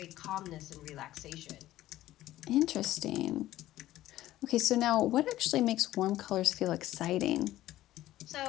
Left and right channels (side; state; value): right; quieter; 14.8 dB